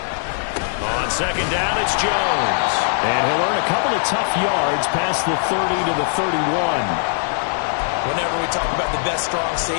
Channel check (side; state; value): right; silent; digital silence